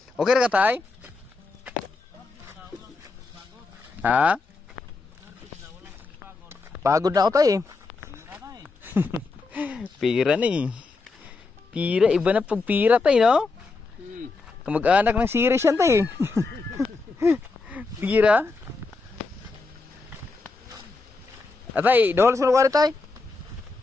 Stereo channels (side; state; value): right; quieter; 3.8 dB